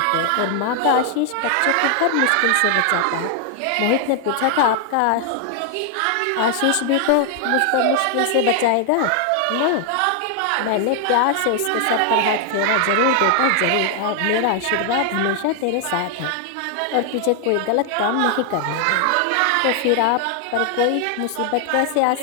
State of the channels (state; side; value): different; both; correlation 0.00